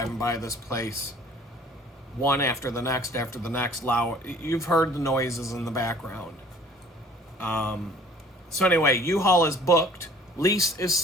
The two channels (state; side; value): normal; both; correlation 0.52